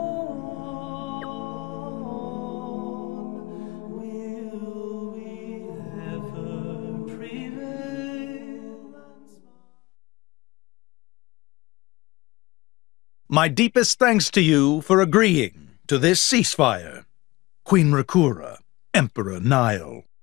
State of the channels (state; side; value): quieter; right; 20.6 dB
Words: Will we ever prevail? My deepest thanks to you for agreeing to this ceasefire, Queen Rakura, Emperor Nile.